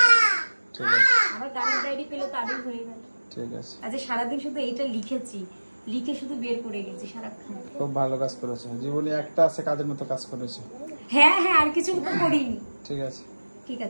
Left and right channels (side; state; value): both; inverted; correlation -1.00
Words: ঠিক আছে। আমার গানের ডায়েরি পেলে তারই হয়ে গেল। ঠিক আছে। আজ সারাদিন শুধু এইটা লিখেছি, লিখে শুধু বের করে গেছি সারাক্ষণ। খুব ভালো কাজ করেছো, জীবনে একটা আছে কাজের মতো কাজ করেছো। হ্যাঁ হ্যাঁ, আর কিছু তো করিনি। ঠিক আছে, ঠিক